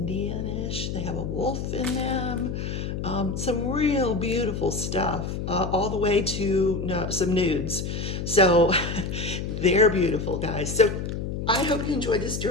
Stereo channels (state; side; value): noise; left; hum, 4 dB below the sound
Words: They have a wolf in them. Some real beautiful stuff, all the way to some nudes. So they're beautiful, guys. So I hope you enjoyed this